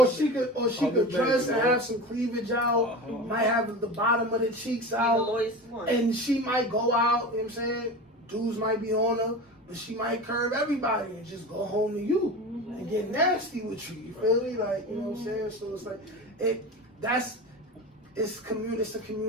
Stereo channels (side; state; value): both; normal; correlation 0.30